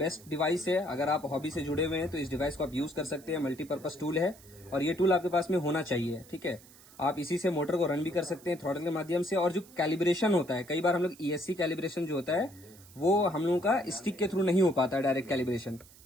डिवाइस है। अगर आप हॉबी से जुड़े हुए हैं तो इस डिवाइस को आप यूज़ कर सकते हैं। मल्टीपर्पज़ टूल है, और ये टूल आपके पास में होना चाहिए, ठीक है। आप इसी से मोटर को रन भी कर सकते हैं थ्रॉटल के माध्यम से। और जो कैलिब्रेशन होता है, कई बार हम लोग ESC कैलिब्रेशन जो होता है वो हम लोगों का स्टिक के थ्रू नहीं हो पाता है, डायरेक्ट कैलिब्रेशन,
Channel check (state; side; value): noise; right; hiss, 23 dB below the sound